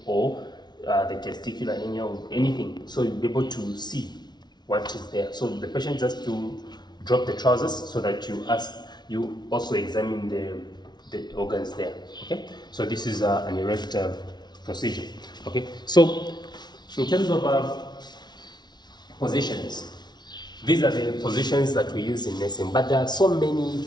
or the testicular hernia or anything. So you'll be able to see what is there. So the patient just to drop the trousers so that you also examine the organs there. Okay. So this is an erect procedure. Okay, so in terms of positions, these are the positions that we use in nursing, but there are so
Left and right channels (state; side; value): late; right; 0.20 ms